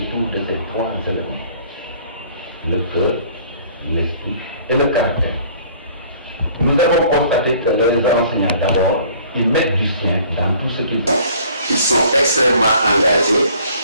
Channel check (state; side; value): inverted; both; correlation -0.54